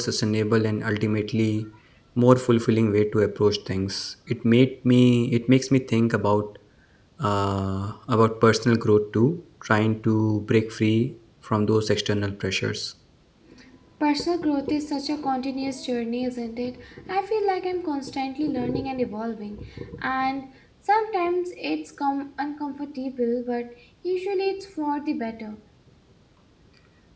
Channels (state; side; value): identical; both; correlation 1.00